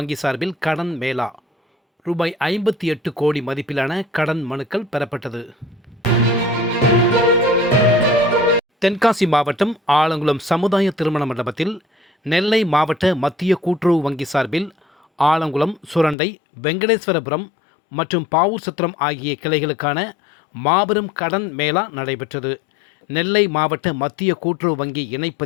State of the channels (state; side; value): drops out; right; at 16.2 s